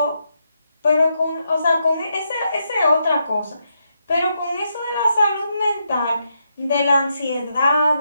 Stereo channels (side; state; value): both; inverted; correlation -0.81